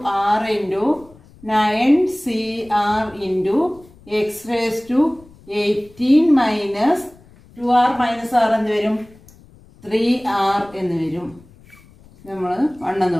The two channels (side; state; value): left; noise; rumble, 25 dB below the sound